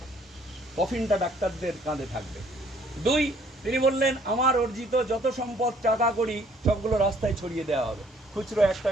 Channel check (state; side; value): normal; both; correlation 0.61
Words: কফিনটা ডাক্তারদের কাঁধে থাকবে। 2, তিনি বললেন আমার অর্জিত যত সম্পদ, টাকা করি, সবগুলো রাস্তায় ছড়িয়ে দেওয়া হবে, খুচরো 1